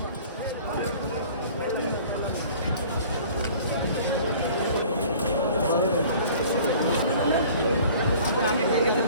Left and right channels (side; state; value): both; inverted; correlation -0.48